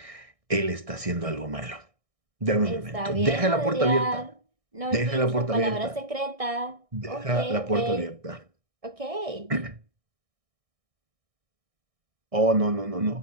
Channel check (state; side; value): late; left; 1.6 ms